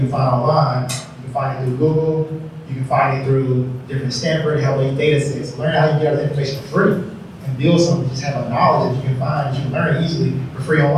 find online. You can find it through Google. You can find it through different Stanford, Help data sets. Learn how you get all the information for free and build something. Just have a knowledge that you can find, that you can learn easily for free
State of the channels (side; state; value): both; identical; correlation 1.00